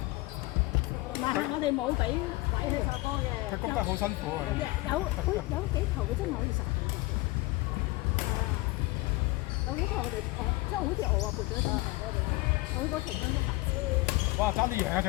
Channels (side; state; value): right; quieter; 21.8 dB